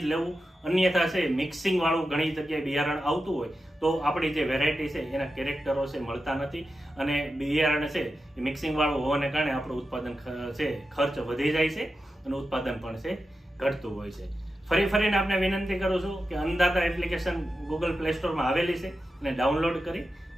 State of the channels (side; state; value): both; normal; correlation 0.91